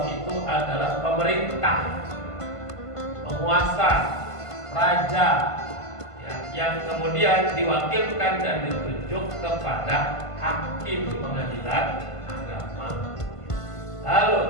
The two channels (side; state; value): right; late; 1.5 ms